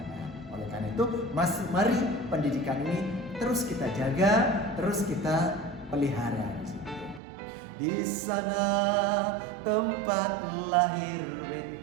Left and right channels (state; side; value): drops out; left; at 7.2 s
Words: Oleh karena itu, mari pendidikan ini terus kita jaga, terus kita pelihara. Di sana tempat lahir